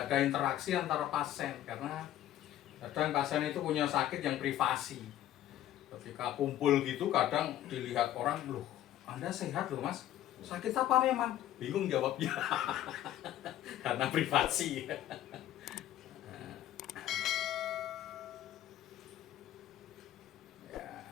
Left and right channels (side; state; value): right; quieter; 12.7 dB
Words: ada interaksi antara pasien karena kadang pasien itu punya sakit yang privasi. Ketika kumpul gitu kadang dilihat orang, loh Anda sehat loh Mas, sakit apa memang? Bingung jawabnya karena privasi.